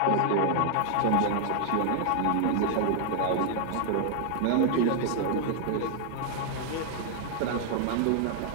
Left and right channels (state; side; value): different; both; correlation 0.00